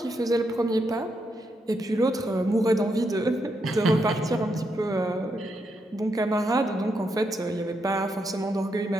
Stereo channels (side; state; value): both; normal; correlation 0.81